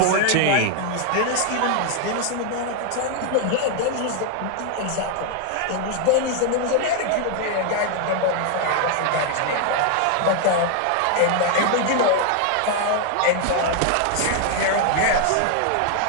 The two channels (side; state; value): both; different; correlation 0.00